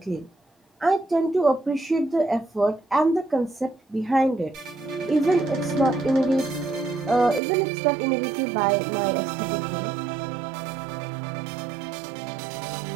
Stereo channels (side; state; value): left; drops out; at 7.4 s